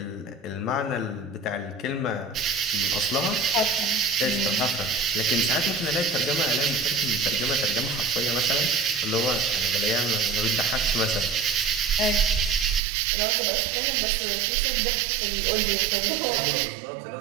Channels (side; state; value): left; drops out; at 12.8 s